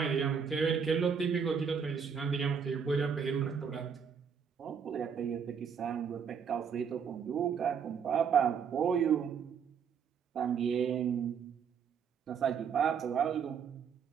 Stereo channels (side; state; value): left; quieter; 6.8 dB